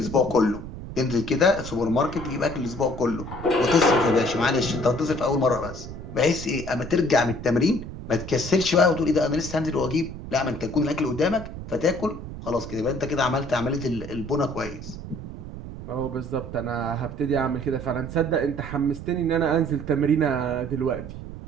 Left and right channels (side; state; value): right; noise; rumble, 10 dB below the sound